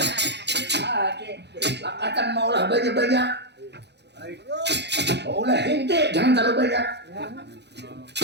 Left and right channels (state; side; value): late; left; 0.50 ms